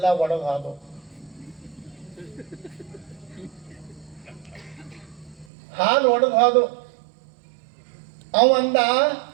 ಒಣಗೋದು. ಹಾಲು ಒಣಗೋದು. ಅವಂದ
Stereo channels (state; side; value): drops out; left; at 5.5 s